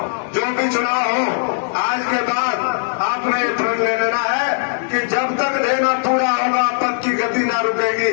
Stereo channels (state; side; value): silent; right; digital silence